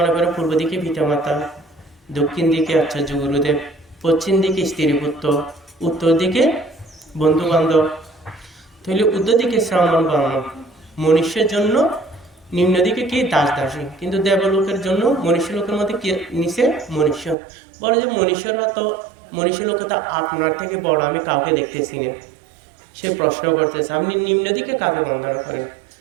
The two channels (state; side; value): drops out; left; at 17.4 s